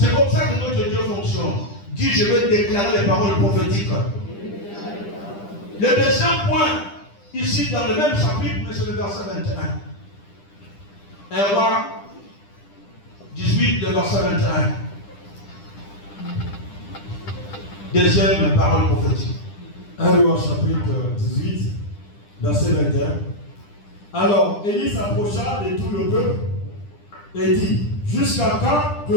comme ça que notre Dieu fonctionne. Dis, je veux déclarer les paroles prophétiques. Le deuxième point, ici dans le même chapitre, mais c'est le verset 21. 1 roi 18, le verset 21. Deuxième parole prophétique. 1 roi chapitre 18, verset 21. Alors Élie s'approcha de tout le peuple et dit, jusqu'à quand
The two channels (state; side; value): late; right; 10 ms